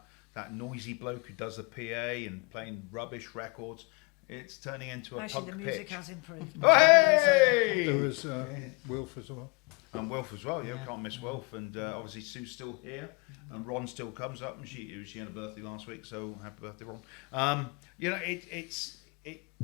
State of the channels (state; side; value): quieter; right; 29.2 dB